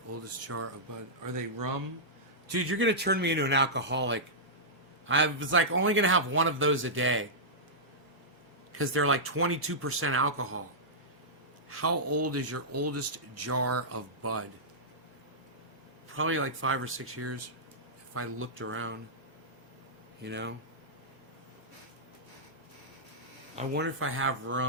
oldest jar of bud. Are they rum? Dude, you're going to turn me into an alcoholic. I was like only going to have one of those a day. Because they're like 22% alcohol. How old is your oldest jar of Bud? Probably like 5 or 6 years, if I looked around, you know? I wonder if I have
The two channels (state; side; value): normal; both; correlation -0.13